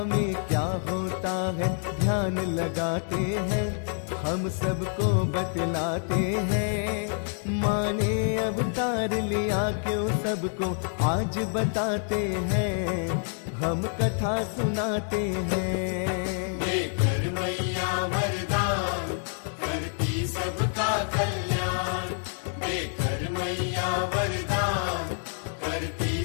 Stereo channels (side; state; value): right; silent; 58 dB below the other